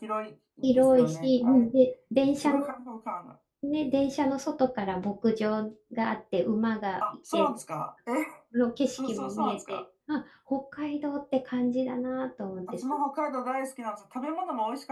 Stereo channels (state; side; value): identical; both; correlation 1.00